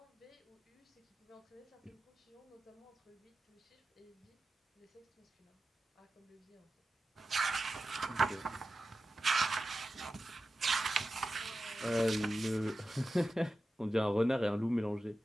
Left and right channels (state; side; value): normal; both; correlation 0.92